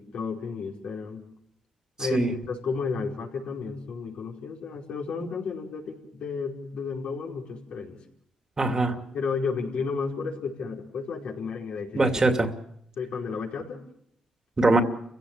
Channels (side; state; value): both; normal; correlation 0.76